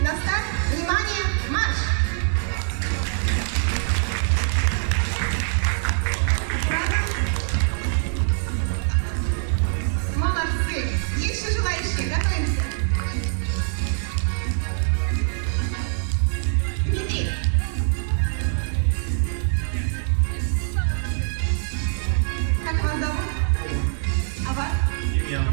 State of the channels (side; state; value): left; silent; 63 dB below the other